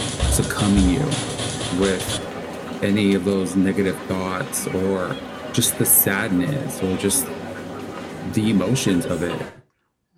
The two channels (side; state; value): both; identical; correlation 1.00